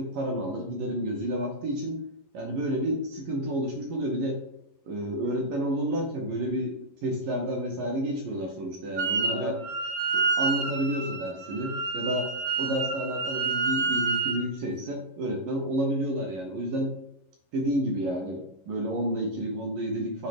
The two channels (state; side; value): late; left; 11 ms